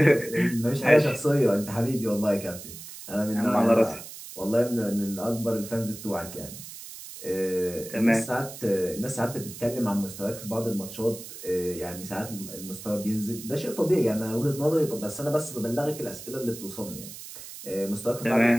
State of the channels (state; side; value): noise; right; hiss, 13 dB below the sound